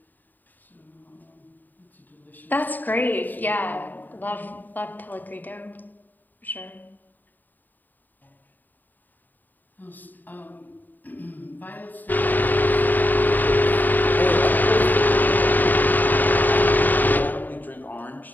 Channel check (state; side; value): late; right; 0.088 ms